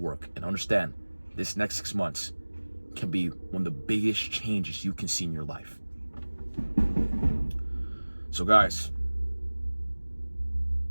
And understand, this next 6 months can be one of the biggest changes you can see in your life. So guys,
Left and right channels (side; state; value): both; inverted; correlation -1.00